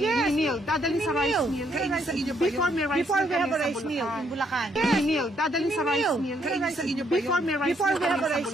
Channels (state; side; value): normal; both; correlation 0.71